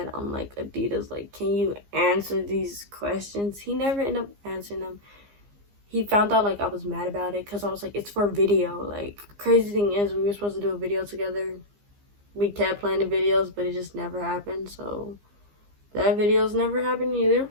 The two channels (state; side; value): late; left; 15 ms